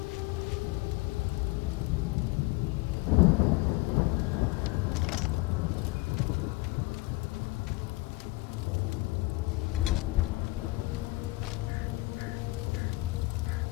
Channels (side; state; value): right; quieter; 22.4 dB